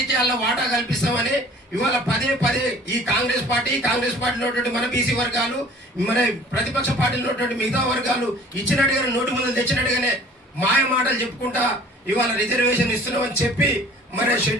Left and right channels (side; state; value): both; normal; correlation 0.49